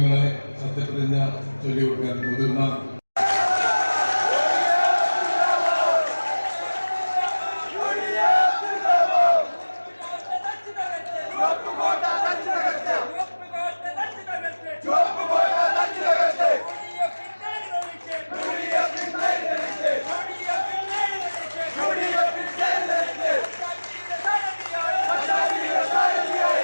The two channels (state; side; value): inverted; both; correlation -1.00